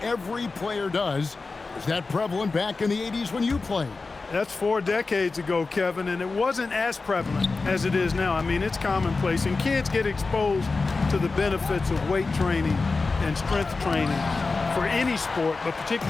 every player does. Is that prevalent back in the 80s when you played? That's 4 decades ago, Kevin, and it wasn't as prevalent as it is now. I mean, it's commonplace, and kids get exposed to the benefits of weight training and strength training for any sport, but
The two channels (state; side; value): quieter; right; 3.9 dB